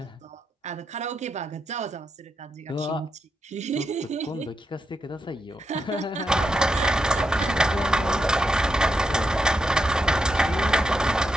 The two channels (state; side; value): normal; both; correlation 0.84